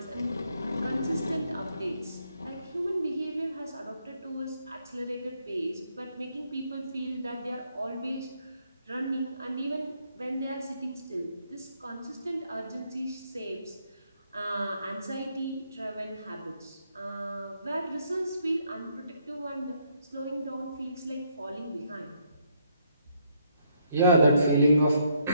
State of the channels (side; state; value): both; inverted; correlation -0.72